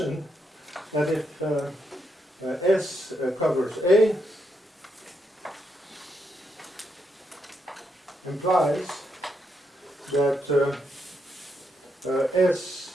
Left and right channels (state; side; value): normal; both; correlation 0.80